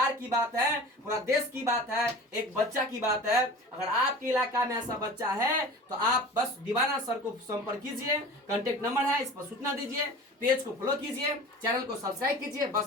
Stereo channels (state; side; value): normal; both; correlation 0.38